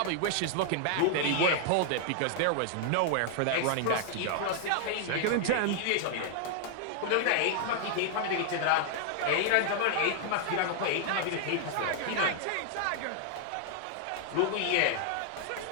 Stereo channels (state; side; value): different; both; correlation 0.00